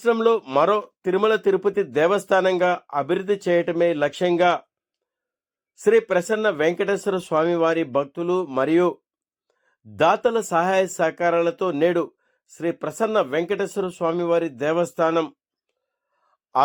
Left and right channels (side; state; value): both; identical; correlation 1.00